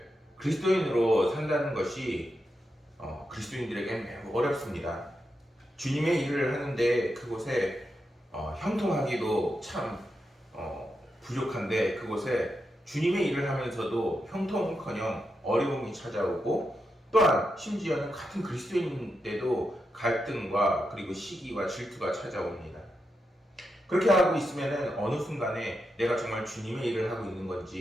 그리스도인으로 산다는 것이 그리스도인들에게는 매우 어렵습니다. 주님의 일을 하는데 그곳에 형통하기도 참 부족한데 그곳에 주님의 일을 하면서도 형통은커녕 어려움이 찾아오고 또한 심지어는 같은 그리스도인인데도 갈등과 그리고 시기와 질투가 찾아옵니다. 그렇게 하고 있으면 어느 순간에 내가 정말 주님의 일을 하고 있는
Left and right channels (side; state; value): both; normal; correlation 0.86